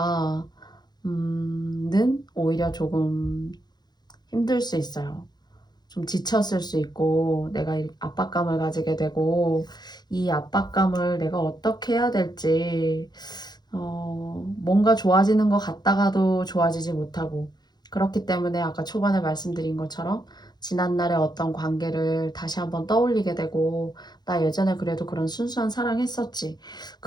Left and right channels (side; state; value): right; late; 0.20 ms